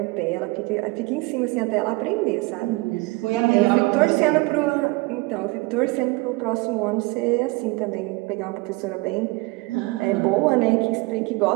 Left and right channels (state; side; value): quieter; left; 24.6 dB